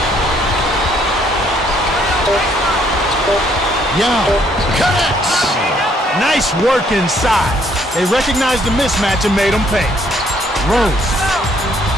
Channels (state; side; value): normal; both; correlation 0.66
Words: Yao connects. Nice work inside. They recognized the mismatch and made them pay. Rose.